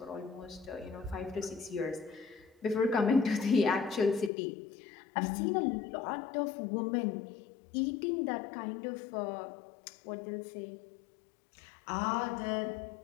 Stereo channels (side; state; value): right; drops out; at 4.3 s